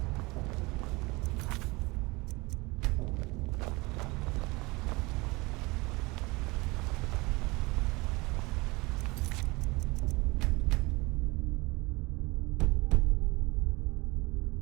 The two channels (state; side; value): quieter; left; 24.1 dB